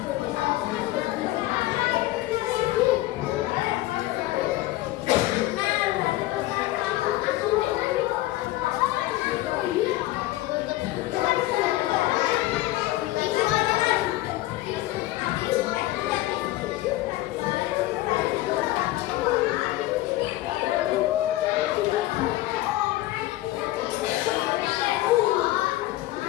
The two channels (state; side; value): quieter; right; 16.9 dB